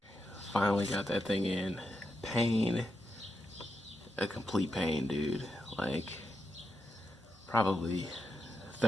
Finally got that thing in. Pain, a complete pain, dude. Like probably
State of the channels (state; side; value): normal; both; correlation 0.85